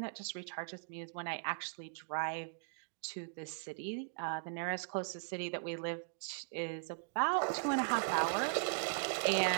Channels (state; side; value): silent; left; digital silence